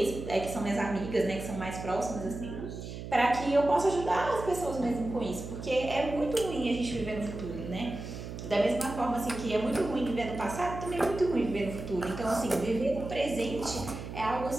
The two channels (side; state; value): right; noise; hum, 9 dB below the sound